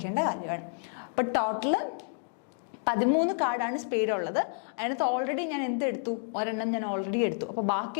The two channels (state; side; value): silent; right; 58 dB below the other